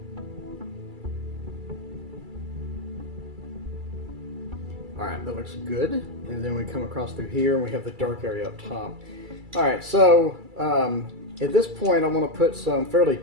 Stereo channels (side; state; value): left; late; 2.3 ms